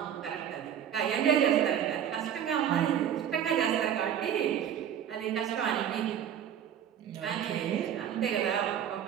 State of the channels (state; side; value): quieter; left; 9.4 dB